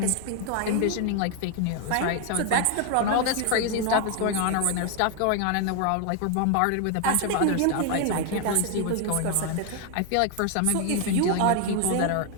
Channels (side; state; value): both; different; correlation 0.01